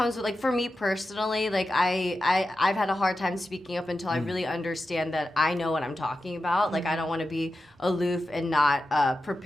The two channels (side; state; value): both; normal; correlation 0.91